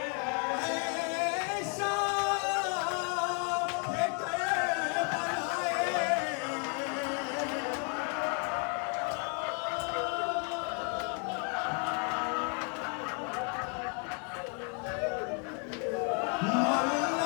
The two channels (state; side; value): quieter; right; 39.0 dB